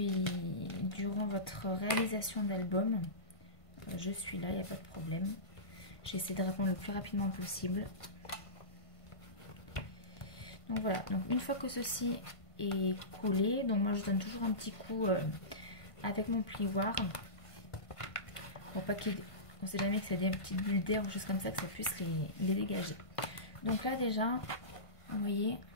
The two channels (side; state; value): right; late; 1.5 ms